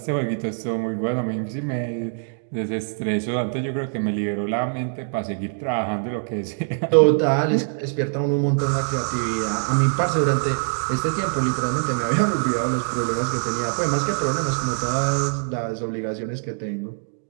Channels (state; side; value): silent; left; digital silence